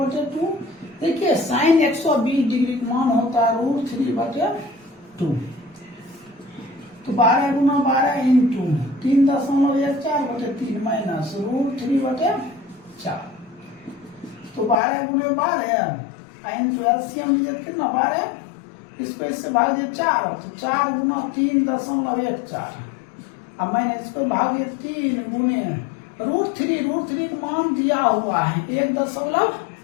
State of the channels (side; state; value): right; drops out; at 14.8 s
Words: देखिए साइन 120 डिग्री का मान होता है √3/2। तो 12 गुना 12 इंटू 3.14 बटे 3 माइनस √3/4। तो 12 गुने 12 इंटू एलसीएम कितना 12, इसको इससे भाग दिए 4, तो 4 गुना 3.14 अब मैंने इसको भाग दिया 3 गुने √3 का मान दिया हुआ है